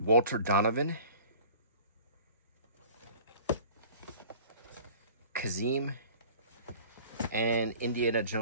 Donovan, Kazim, and Indiana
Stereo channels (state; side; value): inverted; both; correlation -0.47